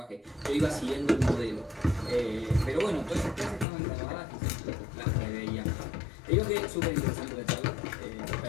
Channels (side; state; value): right; drops out; at 3.7 s